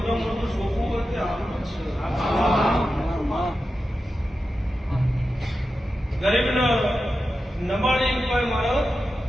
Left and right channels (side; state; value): both; normal; correlation 0.91